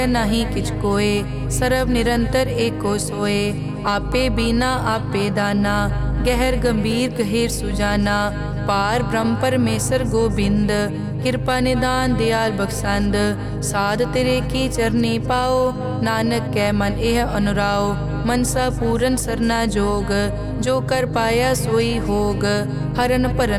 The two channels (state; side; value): identical; both; correlation 1.00